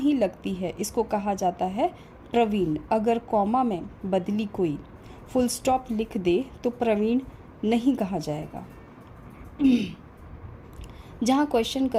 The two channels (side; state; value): both; identical; correlation 1.00